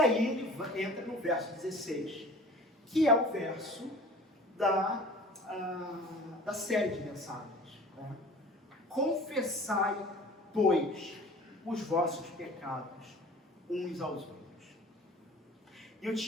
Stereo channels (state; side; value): normal; both; correlation 0.44